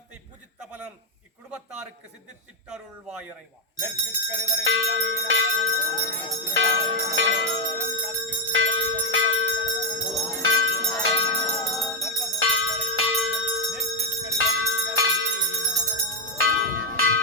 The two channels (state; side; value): normal; both; correlation 0.02